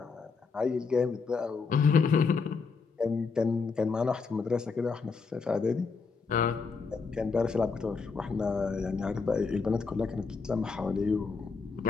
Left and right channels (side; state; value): right; quieter; 4.9 dB